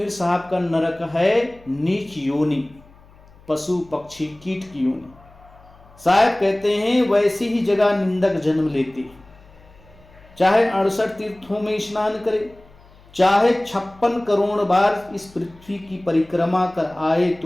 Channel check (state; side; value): noise; left; hum, 26 dB below the sound